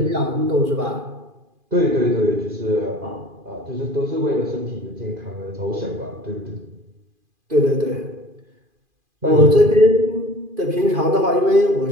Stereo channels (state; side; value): late; left; 2.4 ms